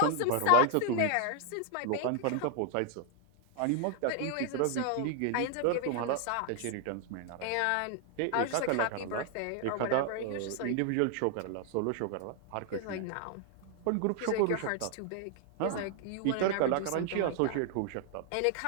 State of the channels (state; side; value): different; both; correlation 0.00